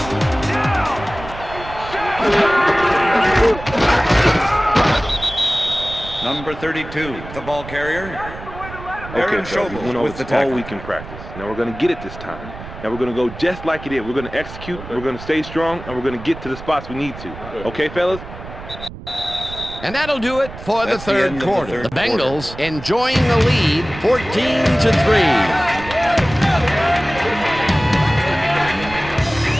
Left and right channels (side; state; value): right; noise; rumble, 13 dB below the sound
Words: Number 32, the ball carrier. Aaron fellas, we went Schobel over with the this all tackle. week in practice. Now we're going to get it this time. Now we're going to go just like it is. We're going to execute, we're going to stay strong, and we're going to get to the spots we need to. Okay, fellas? And that'll do it for That's the the third end of the quarter. third The Bengals enjoying the lead, 14-3.